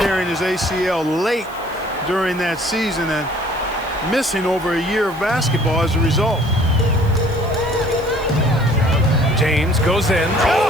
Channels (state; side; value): noise; right; hiss, 23 dB below the sound